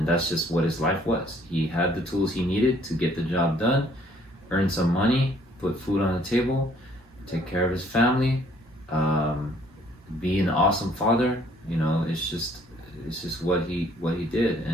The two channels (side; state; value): both; normal; correlation 0.62